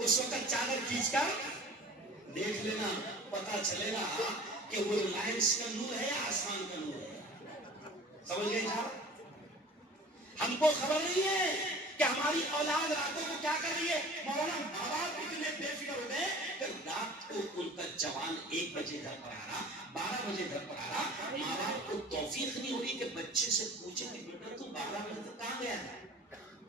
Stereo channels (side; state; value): both; normal; correlation 0.43